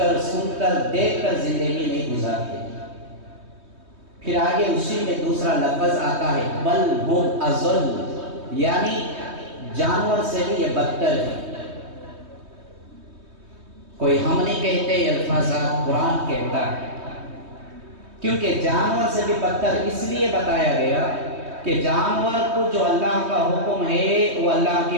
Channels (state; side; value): late; left; 3.2 ms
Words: سن کر، دیکھ کر زندگی نہیں گزارتے۔ پھر آگے اسی میں دوسرا لفظ آتا ہے بل ہم اضل، یعنی جانور سے بھی یہ بدتر ہے۔ کوئی ہم نہیں کہتے، یہ الفاظات قرآن کہتا ہے، کیونکہ جانور سے بھی بدتر اس لیے بتایا گیا کہ جانور کو جو اللہ کا حکم ہے وہ اللہ کی